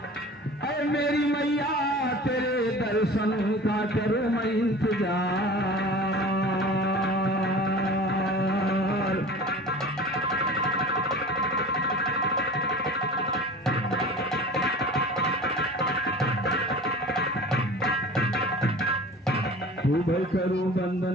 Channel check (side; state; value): both; normal; correlation 0.39